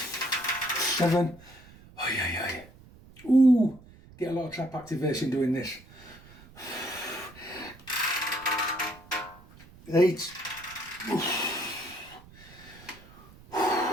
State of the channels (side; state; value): right; noise; rumble, 22 dB below the sound